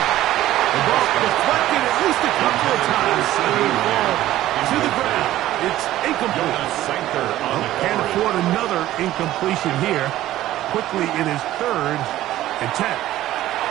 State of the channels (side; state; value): left; quieter; 14.4 dB